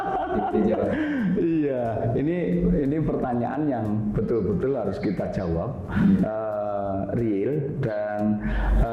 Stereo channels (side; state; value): both; identical; correlation 1.00